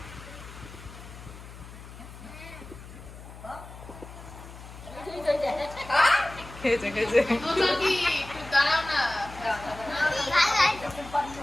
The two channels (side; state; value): left; noise; hum, 15 dB below the sound